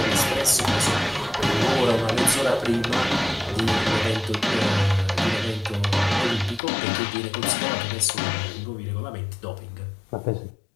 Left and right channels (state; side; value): drops out; right; at 6.6 s